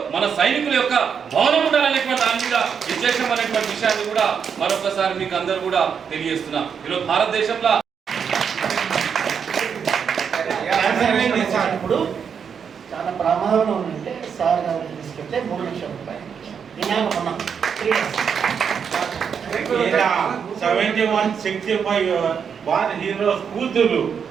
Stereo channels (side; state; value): left; quieter; 7.0 dB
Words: మన సైనికుల యొక్క భవనం ఉండాలనేటువంటి దాని మీద విశేషం అనేటువంటి విషయాన్ని కూడా మరొకసారి మీకు అందరూ కూడా తెలియజేస్తున్నా. ఈరోజు భారతదేశంలో ఇప్పుడు చాలా ప్రమాదంలో ఉందంటే సార్ గారు తీసుకెళ్తే 3 లక్షల రూపాయలు 71-65 వారి హీరోస్ కూతురు